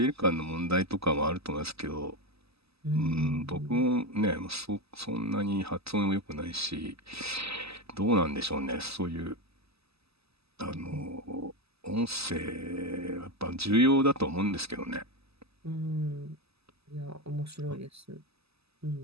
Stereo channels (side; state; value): left; late; 0.78 ms